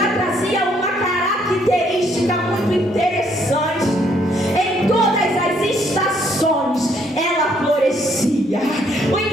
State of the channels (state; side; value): normal; both; correlation 0.68